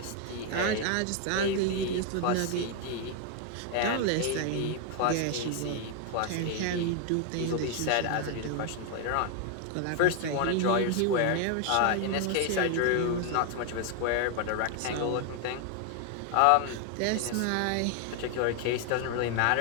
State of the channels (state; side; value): different; both; correlation 0.01